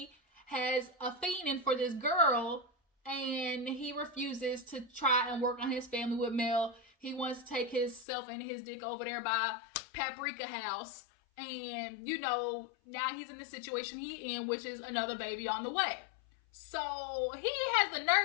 has a fiending for this girl and he refuses to try and work on his family with Mel. He wants to take himself and his dick over there by Paprika House. And, you know, now he's in the situation he in, which is another baby on the way. So he has the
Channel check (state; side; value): drops out; right; at 8.1 s